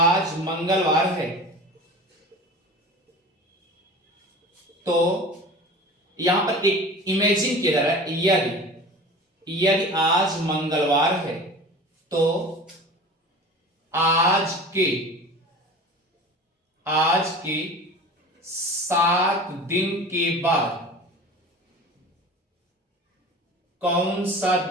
मंगलवार है, तो यहां पर एक इमेजिन किया जा रहा है, यदि आज मंगलवार है तो आज के 7 दिन के बाद कौन सा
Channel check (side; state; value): both; normal; correlation 0.37